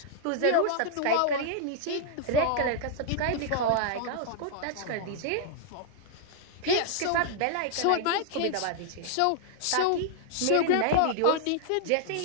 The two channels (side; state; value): both; different; correlation -0.01